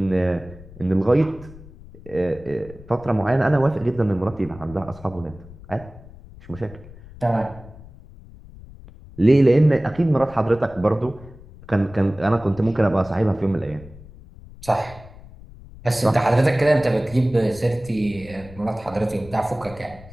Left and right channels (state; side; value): noise; left; rumble, 19 dB below the sound